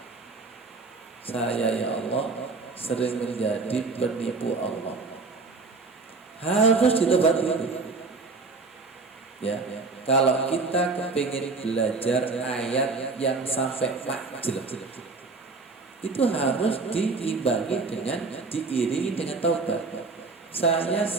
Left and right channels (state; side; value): quieter; left; 4.0 dB